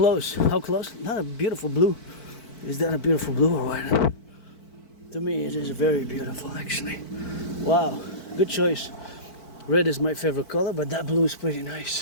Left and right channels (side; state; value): right; late; 4.5 ms